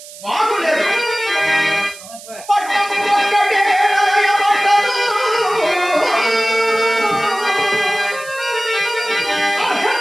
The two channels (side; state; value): right; noise; hiss, 17 dB below the sound